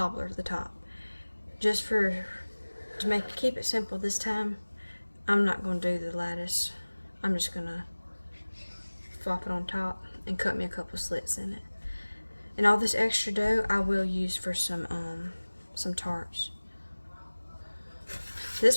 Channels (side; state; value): both; inverted; correlation -1.00